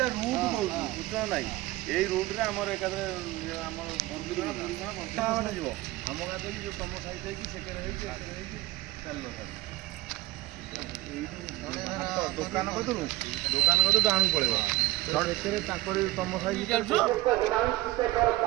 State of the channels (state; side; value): quieter; left; 18.8 dB